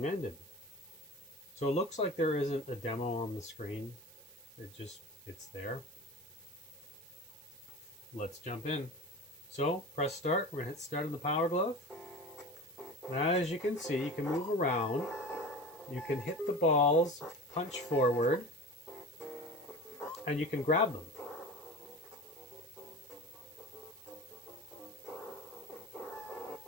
ended. So it looks like there isn't a demo on the screen. It's there. Let's jump in. So press start. We're gonna hit start on the Power Glove. And as you can see, you can move around. You can hit the balls, punch forward, and you can grab them.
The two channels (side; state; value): right; noise; hiss, 22 dB below the sound